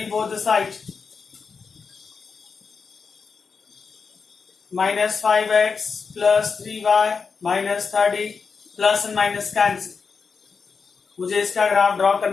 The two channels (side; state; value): right; quieter; 5.3 dB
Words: both the side, minus 5x plus 3y minus 30, plus and minus cancel. मुझे इसका ग्राफ ड्रॉ